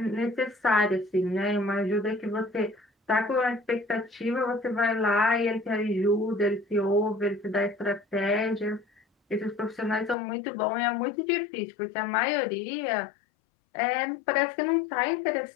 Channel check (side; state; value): right; drops out; at 10.2 s